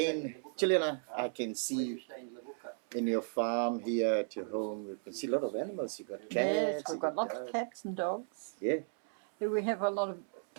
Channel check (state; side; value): silent; left; 54 dB below the other